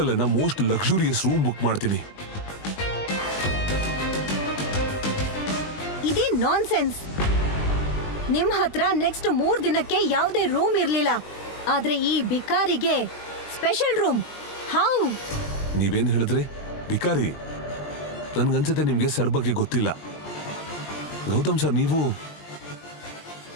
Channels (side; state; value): right; late; 20 ms